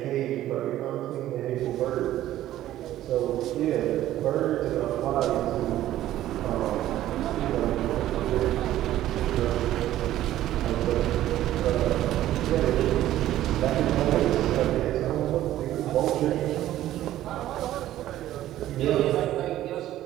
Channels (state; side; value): quieter; left; 13.6 dB